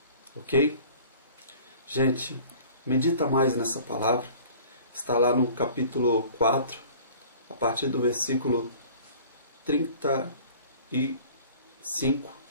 Ok? Gente, medita mais nessa palavra. Está lá no capítulo 4, a partir do versículo 35.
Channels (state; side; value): inverted; both; correlation -0.47